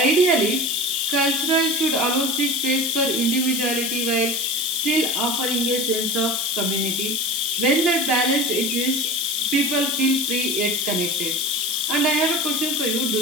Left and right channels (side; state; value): left; noise; hiss, 2 dB below the sound